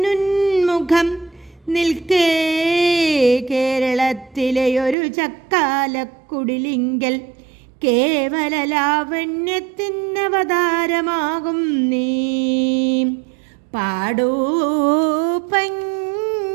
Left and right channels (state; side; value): drops out; left; at 5.0 s